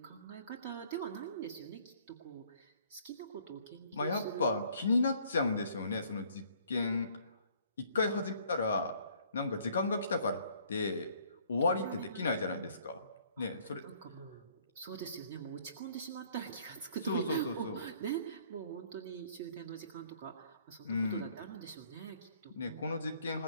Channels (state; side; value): inverted; both; correlation -0.60